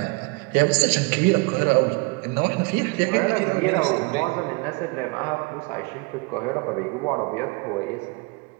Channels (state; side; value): quieter; left; 28.4 dB